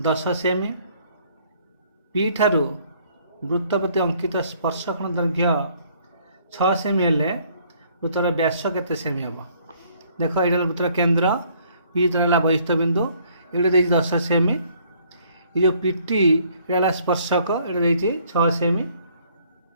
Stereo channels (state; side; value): inverted; both; correlation -0.63